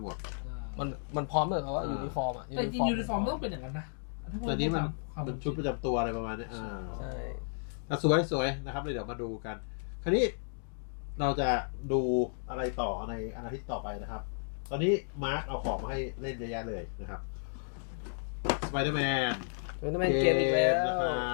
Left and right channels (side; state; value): right; silent; digital silence